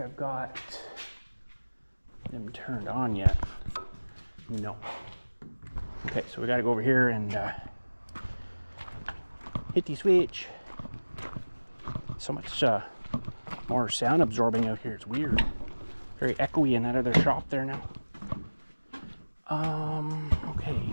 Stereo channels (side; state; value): both; inverted; correlation -1.00